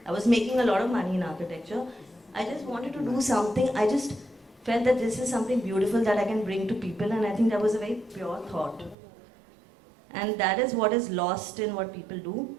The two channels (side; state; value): left; drops out; at 9.0 s